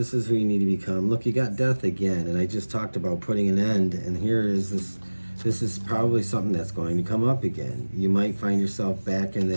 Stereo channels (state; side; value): inverted; both; correlation -1.00